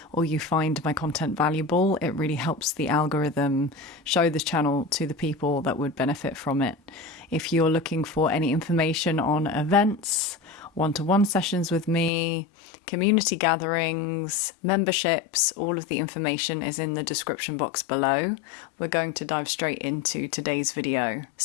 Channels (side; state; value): right; drops out; at 12.1 s